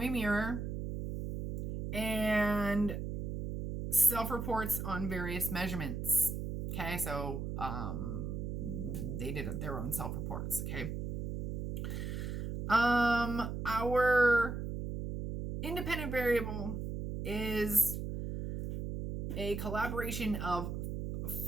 mirror, and self-reports on various measurements. Okay, so they did their own self-reports. Okay. Our independent variable is a collaboration of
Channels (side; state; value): right; noise; hum, 4 dB below the sound